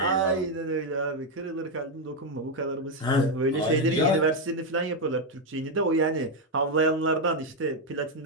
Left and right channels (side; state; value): both; normal; correlation 0.03